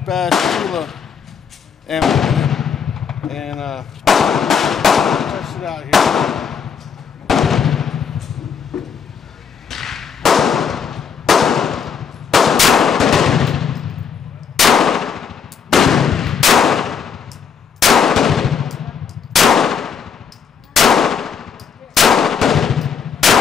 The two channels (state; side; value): quieter; right; 6.8 dB